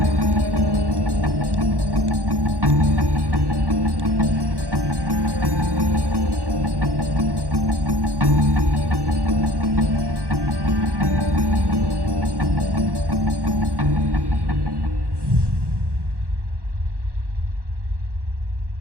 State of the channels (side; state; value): left; late; 1.1 ms